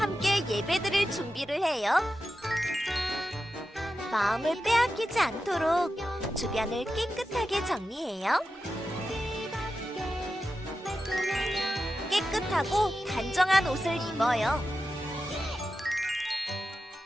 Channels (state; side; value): normal; both; correlation 0.91